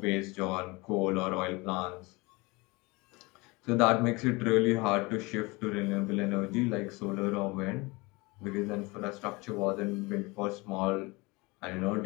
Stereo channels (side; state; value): right; quieter; 24.9 dB